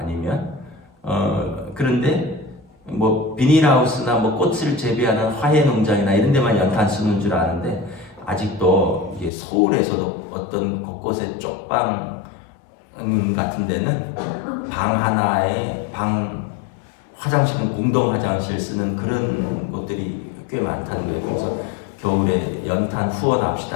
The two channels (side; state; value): right; drops out; at 9.3 s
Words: 그런데 뭐 비닐하우스나 뭐 꽃을 재배하는 화훼 농장이나 이런 데만 연탄 쓰는 줄 아는데, 아직도 이게 서울에서도 어떤 곳곳에 쪽방 같은 데는 방 하나에 화장실은 공동 화장실 쓰는 그런 곳들이 꽤 많다는 거예요. 그래서 겨울에 연탄